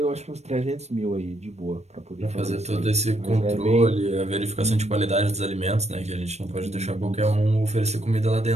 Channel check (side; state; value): left; late; 0.32 ms